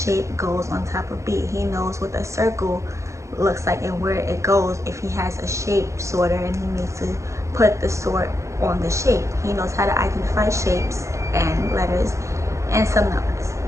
goes on top of B. He knows what a circle looks like and where it goes if he has a shape sorter and he needs to put the sort on the shape. He knows how to identify shapes and letters and some numbers.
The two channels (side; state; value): left; late; 0.14 ms